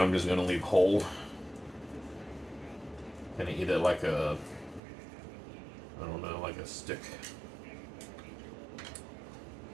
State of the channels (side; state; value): left; drops out; at 4.8 s